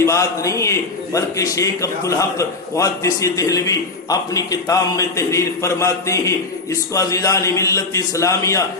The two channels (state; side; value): quieter; right; 3.5 dB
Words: بات نہیں ہے، بلکہ شیخ عبدالحق محدث دہلوی اپنی کتاب میں تحریر فرماتے ہیں، اس کو عزیزان ملت اسلامیہ